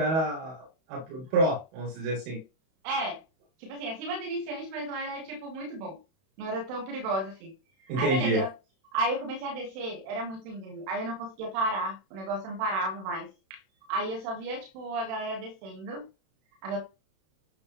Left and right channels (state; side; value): late; left; 31 ms